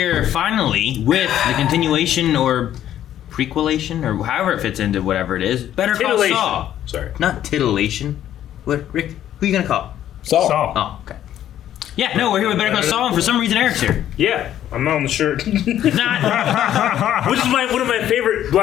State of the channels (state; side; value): quieter; right; 11.4 dB